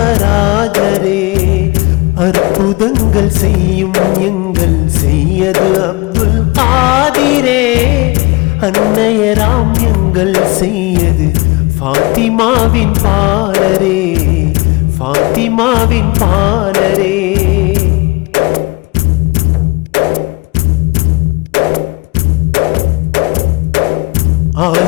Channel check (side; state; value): right; quieter; 24.1 dB